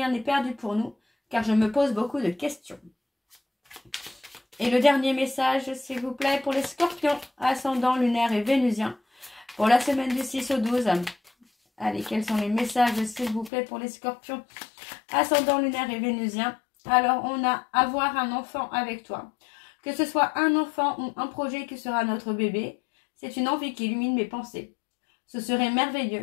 n'est perdu pour nous, car je me pose beaucoup de questions. Et le dernier message, s'il vous plaît, pour les scorpions, ascendant lunaire et vénusien, pour la semaine du 6 au 12. Allez, quels sont les messages, s'il vous plaît, pour les scorpions, ascendant lunaire et vénusien? Alors, on a avoir un enfant avec toi. Que ce soit un enfant ou un projet qui sera notre bébé, c'est une envie qui illumine mes pensées. Ce serait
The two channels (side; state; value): right; drops out; at 13.5 s